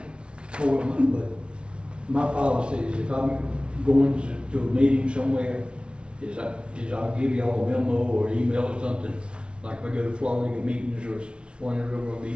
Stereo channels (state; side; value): late; left; 0.058 ms